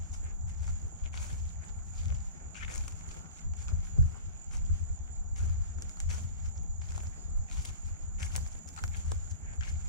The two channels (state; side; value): inverted; both; correlation -0.37